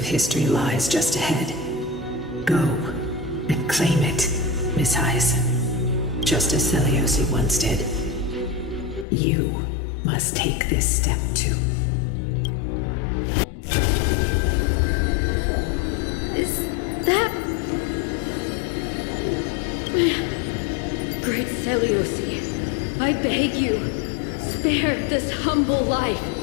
history lies just ahead. Go and claim it, Miss Hyacine. Just as Seliosi once did. You must take this step too. Is that... Great Seliosi, I beg you, spare this humble life.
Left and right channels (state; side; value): drops out; right; at 9.1 s